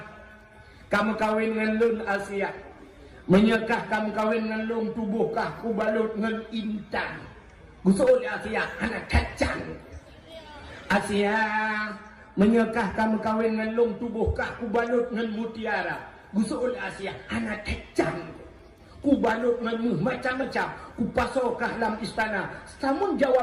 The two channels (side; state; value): both; identical; correlation 1.00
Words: Kamu kawin dengan Lun Asia. Menyekah kamu kawin dengan lung tubuhkah ku balut dengan intan. Gusul Asia anak kacang. Asia menyekah kamu kawin dengan lung tubuhkah ku balut dengan mutiara. Gusul Asia anak kacang. Ku balut dengan macam-macam. Ku pasokah dalam istana. Namun